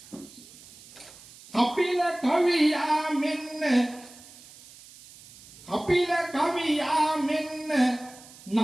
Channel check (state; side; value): noise; right; hiss, 20 dB below the sound